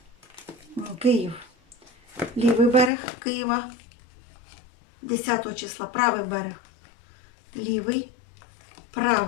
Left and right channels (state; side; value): drops out; right; at 2.9 s